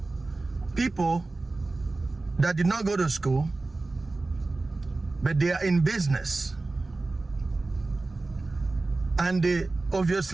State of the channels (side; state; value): left; quieter; 3.3 dB